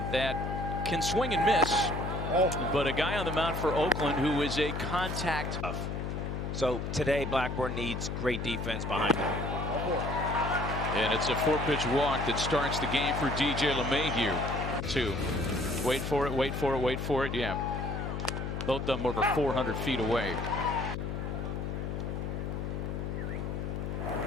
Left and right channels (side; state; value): left; noise; hum, 3 dB below the sound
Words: that can swing and miss. But a guy on the mound for Oakland who is a contact. So today Blackburn needs great defense behind him. And it's a 4-pitch walk that starts the game for DJ LeMahieu. 2. Wait for it, wait for it, wait for it. Yeah. Both of them over 400 feet away.